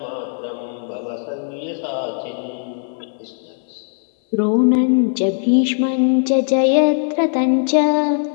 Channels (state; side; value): silent; right; 56 dB below the other